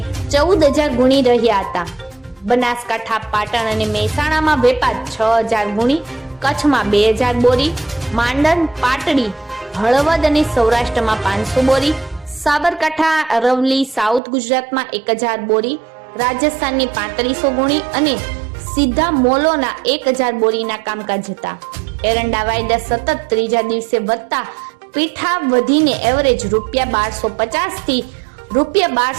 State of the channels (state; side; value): drops out; left; at 14.2 s